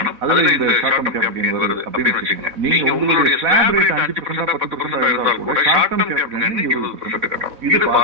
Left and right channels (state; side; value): late; left; 4.1 ms